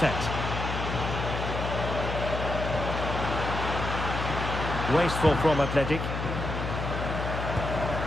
Wasteful from Athletic.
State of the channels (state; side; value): noise; left; hum, 3 dB below the sound